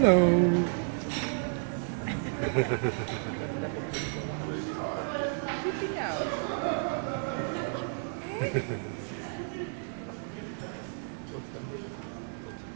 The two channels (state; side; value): silent; left; 57 dB below the other